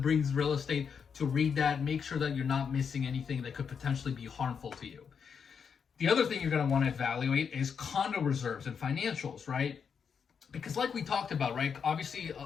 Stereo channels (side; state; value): right; quieter; 6.6 dB